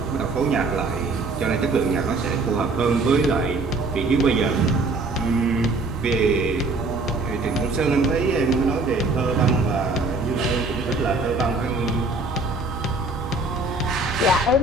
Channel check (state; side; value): quieter; left; 3.3 dB